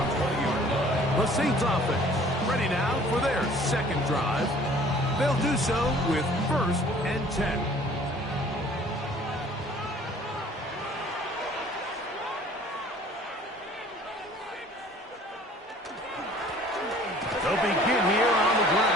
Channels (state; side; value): normal; both; correlation 0.53